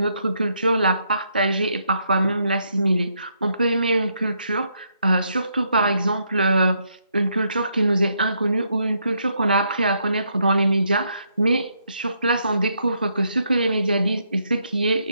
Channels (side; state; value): both; inverted; correlation -0.76